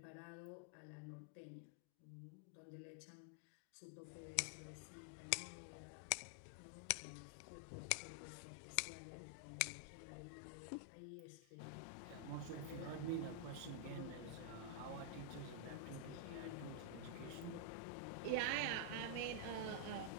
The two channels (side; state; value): both; different; correlation -0.01